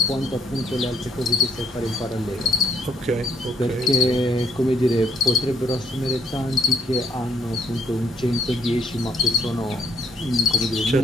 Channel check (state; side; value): normal; both; correlation 0.68